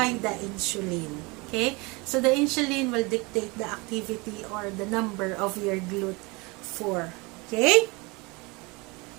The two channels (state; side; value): quieter; left; 26.2 dB